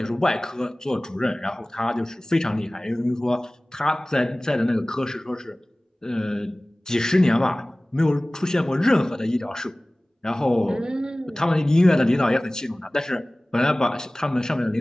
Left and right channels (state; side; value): normal; both; correlation 0.98